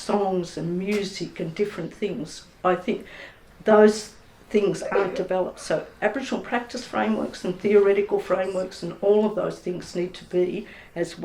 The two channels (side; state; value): both; identical; correlation 1.00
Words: and music and different things. I think those things aren't developed. So Aboriginal practice frameworks and theoretical frameworks and all of those things need to be as